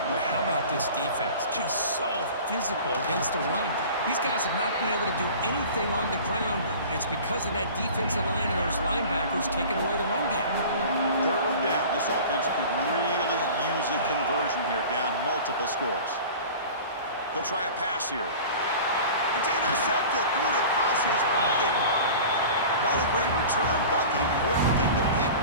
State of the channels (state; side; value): inverted; both; correlation -0.40